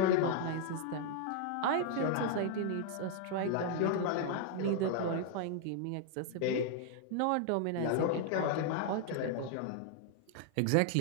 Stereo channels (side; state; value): both; different; correlation 0.00